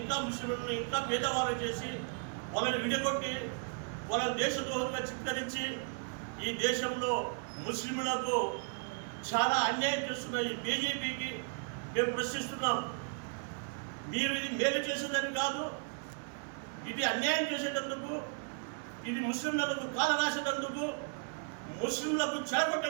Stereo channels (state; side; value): silent; left; 54 dB below the other